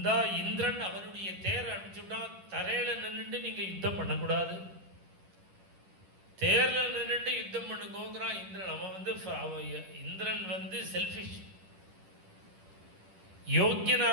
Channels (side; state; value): left; late; 10 ms